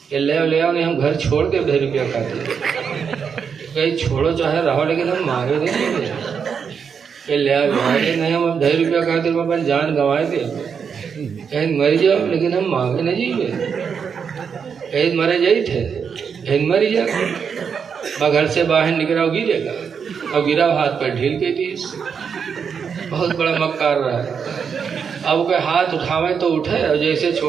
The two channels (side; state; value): left; quieter; 6.6 dB